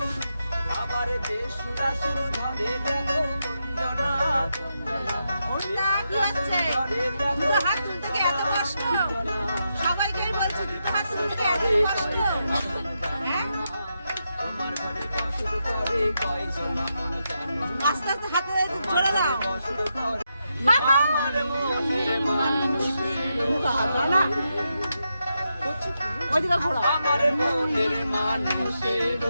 আবার বেসুরাসুর ধরে দেখো কুঞ্জনা কুঞ্জনা ওটা কি হচ্ছে দুটো হাত তুলতে কি এত কষ্ট সবাইকেই বলছি দুটো হাত তুলতে এত কষ্ট হ্যাঁ তোমার ঘরে বসত করে কয়জন মন জানো আস্তে আস্তে হাতে ধরে দাও বসত করে আমার মনের মানুষের না ওইদিকে ঘোরো আমার মনের মানুষের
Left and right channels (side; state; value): both; inverted; correlation -0.85